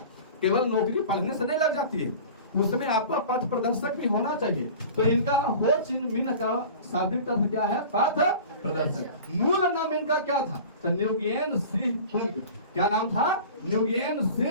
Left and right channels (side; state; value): both; inverted; correlation -0.39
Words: केवल नौकरी पढ़ने से नहीं लग जाती है, उसमें आपका पथ प्रदर्शक भी होना चाहिए। तो इनका हो चिन मिन का शाब्दिक अर्थ क्या है, पथ प्रदर्शक। मूल नाम इनका क्या था, तो न्यूगेन सिंह कुंग। क्या नाम था, न्यूगेन